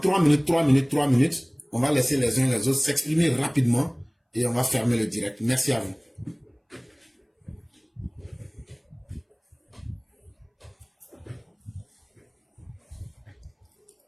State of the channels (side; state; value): both; identical; correlation 1.00